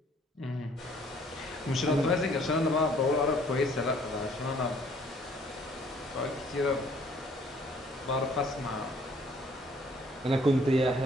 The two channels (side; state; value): both; normal; correlation 0.60